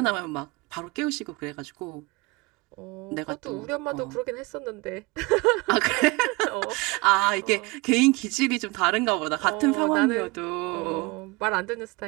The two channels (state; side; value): quieter; left; 24.7 dB